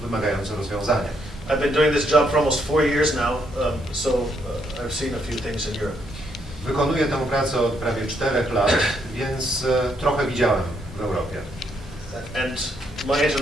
wymagający rozwiązania. I've been doing this job for almost 4 years now, so I've seen a few things in Europe. Wykonuję tę pracę od prawie 4 lat, więc trochę widziałem w Europie. And my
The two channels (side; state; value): both; normal; correlation 0.74